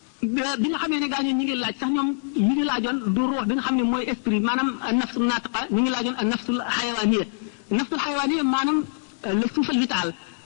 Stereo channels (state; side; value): silent; right; 62 dB below the other